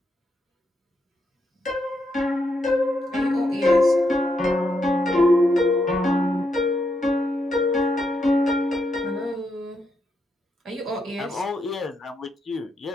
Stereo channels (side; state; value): both; normal; correlation 0.81